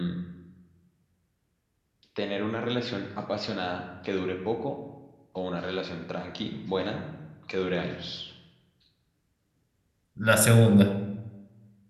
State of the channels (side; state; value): both; identical; correlation 1.00